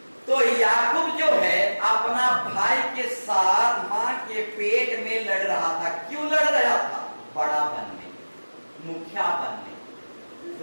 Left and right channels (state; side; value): inverted; both; correlation -1.00